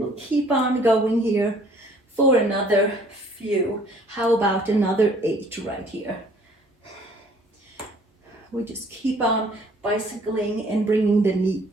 keep on going here for another few. How about another 8 right here? We just keep on bicycling and bringing the knee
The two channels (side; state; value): both; normal; correlation 0.57